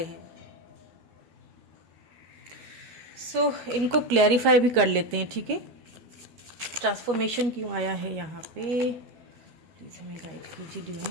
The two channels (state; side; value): late; left; 13 ms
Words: हैं। इनको क्लैरिफाई भी कर लेते हैं। ठीक है, ट्रांसफॉर्मेशन क्यों आया है यहाँ पे, प्लीज़ हमें गाइड कीजिए